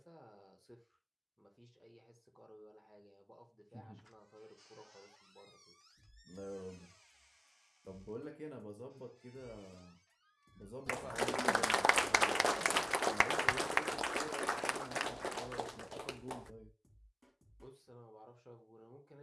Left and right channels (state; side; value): identical; both; correlation 1.00